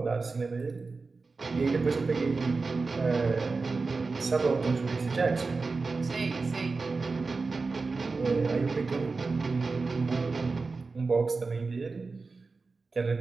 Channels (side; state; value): left; quieter; 4.1 dB